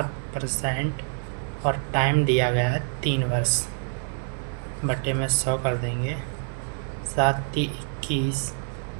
और टाइम दिया गया है 3 वर्ष बटे में 100 कर देंगे। 7×3 = 21,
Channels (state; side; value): silent; left; 61 dB below the other